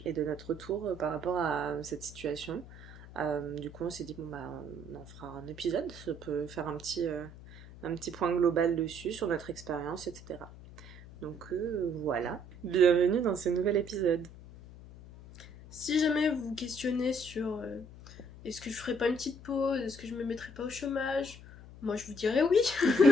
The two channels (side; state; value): left; noise; hum, 17 dB below the sound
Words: et de notre retour par rapport à cette situation. Du coup, on s'est dit, on en fera un épisode, ça peut faire un petit point global dessus, sur notre expérience, etc. Donc voilà, bienvenue dans ce nouvel épisode. Si jamais vous vous questionnez sur est-ce que je ferais pas une petite pause, est-ce que je me mettrais pas au chômage, moi je vous dirais oui.